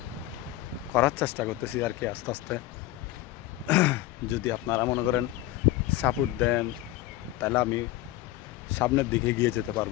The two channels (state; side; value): quieter; right; 15.8 dB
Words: করার চেষ্টা করতেছি আর কি আস্তে আস্তে। যদি আপনারা মনে করেন সাপোর্ট দেন তাহলে আমি সামনের দিকে গিয়ে যেতে